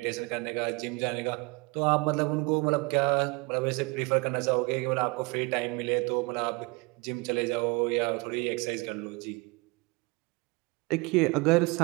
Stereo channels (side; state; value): left; quieter; 27.7 dB